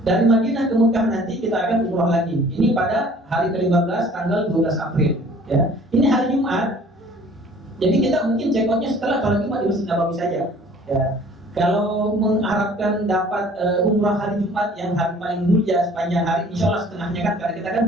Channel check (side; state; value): both; normal; correlation 0.52